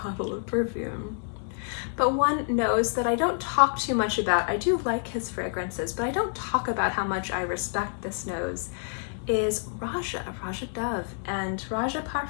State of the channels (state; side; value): silent; right; 59 dB below the other